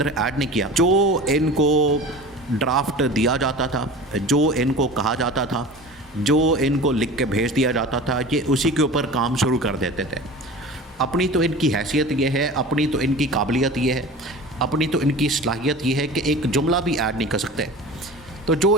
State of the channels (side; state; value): both; normal; correlation 0.36